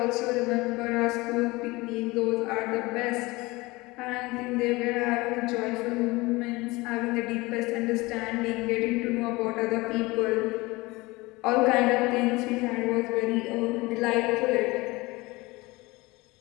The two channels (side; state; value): right; quieter; 22.3 dB